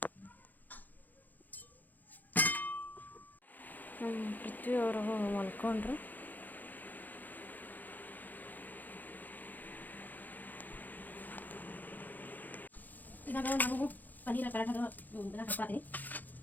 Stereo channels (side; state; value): right; late; 0.084 ms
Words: ಪೃಥ್ವಿ ಅವರು ಮಲ್ಕೊಂಡ್ರು. ಇವಾಗ ನಮಗೂ ಪನ್ನೀರ್ ಪರಾಠದ ಹಾಕ್ಕೊಳ್ತೀನಿ.